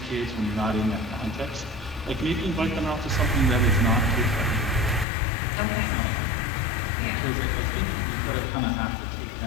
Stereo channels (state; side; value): drops out; right; at 5.1 s